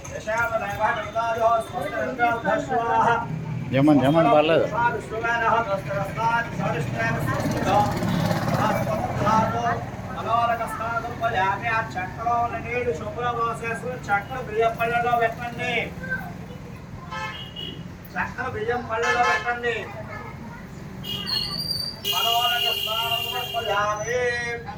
జమన్ జమన్ పర్లేదు చక్రం నీళ్లు శుభ్రం పోసేసుకుని చక్రం బియ్యం పళ్ళలో పెట్టండి చక్రం బియ్యం పళ్ళలో పెట్టండి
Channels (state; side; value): identical; both; correlation 1.00